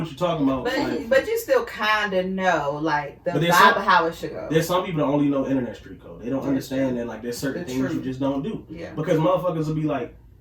you're talking about. But you still kind of know, like, the But there's vibe some- of how it should go. There's some people that only know internet street code. They don't Yeah, understand that like there's certain It's things true. you just don't do. Yeah. Because motherfuckers will be like,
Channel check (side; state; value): both; identical; correlation 1.00